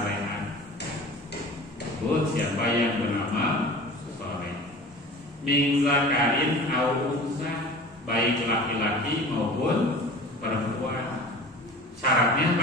Siapa yang beramal soleh, min zakarin au unsa, baik laki-laki maupun perempuan. Syaratnya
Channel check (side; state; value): both; normal; correlation 0.39